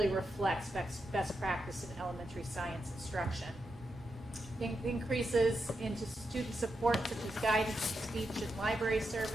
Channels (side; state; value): both; normal; correlation 0.86